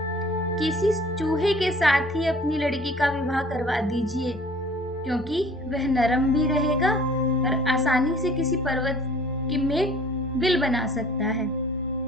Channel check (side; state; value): both; normal; correlation 0.50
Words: किसी चूहे के साथ ही अपनी लड़की का विवाह करवा दीजिए, क्योंकि वह नरम भी रहेगा और आसानी से किसी पर्वत की में बिल बना सकता है।